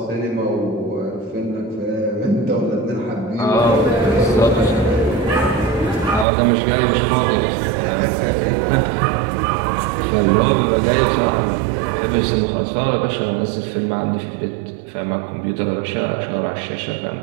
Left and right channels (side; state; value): left; drops out; at 6.2 s